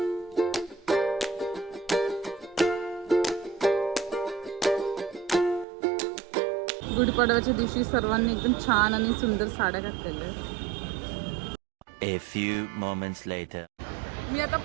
गुढीपाडव्याच्या दिवशी सर्वांनी एकदम छान आणि सुंदर साड्या घातलेल्या आहेत. A few moments later. मी आता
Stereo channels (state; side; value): drops out; left; at 5.7 s